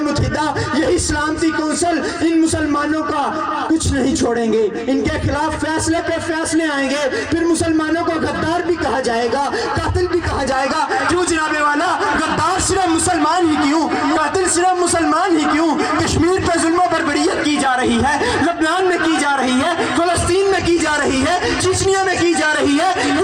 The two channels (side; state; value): both; identical; correlation 1.00